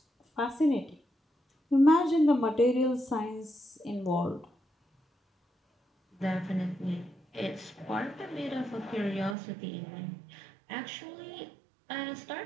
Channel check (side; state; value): left; drops out; at 9.3 s